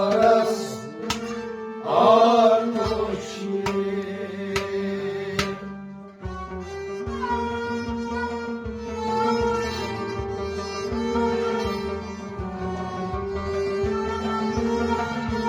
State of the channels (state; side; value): identical; both; correlation 1.00